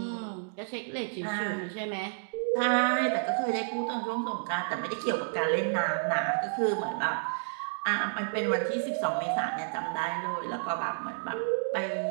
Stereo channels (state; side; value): silent; left; digital silence